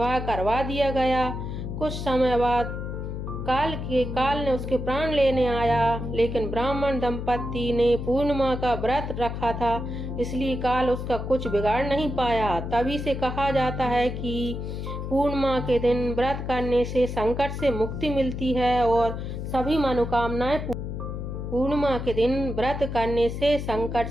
करवा दिया गया। कुछ समय बाद काल ने उसके प्राण लेने आया, लेकिन ब्राह्मण दंपति ने पूर्णिमा का व्रत रखा था, इसलिए काल उसका कुछ बिगाड़ नहीं पाया। तभी से कहा जाता है कि पूर्णिमा के दिन व्रत करने से संकट से मुक्ति मिलती है और सभी मनोकामनाएं पूर्णिमा के दिन व्रत करने से संकट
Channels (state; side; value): noise; left; hum, 5 dB below the sound